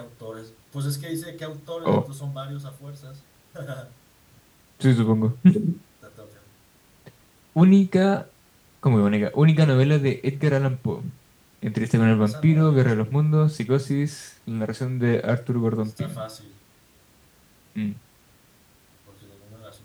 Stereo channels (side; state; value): both; identical; correlation 1.00